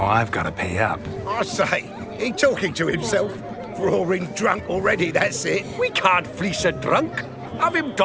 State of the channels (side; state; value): both; identical; correlation 1.00